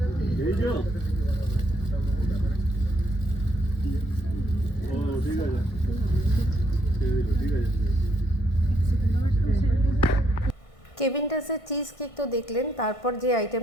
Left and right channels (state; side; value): late; right; 1.6 ms